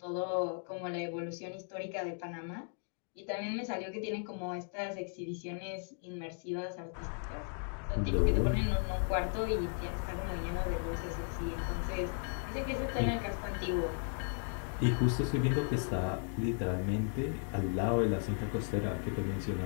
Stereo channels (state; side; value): silent; right; 54 dB below the other